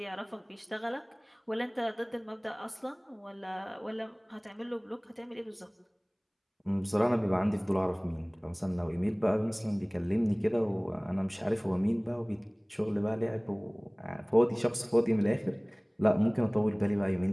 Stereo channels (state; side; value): identical; both; correlation 1.00